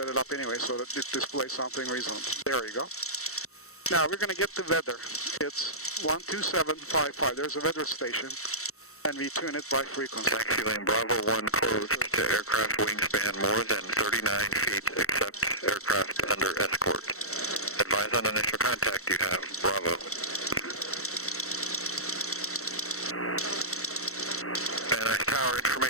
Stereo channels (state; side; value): late; right; 0.64 ms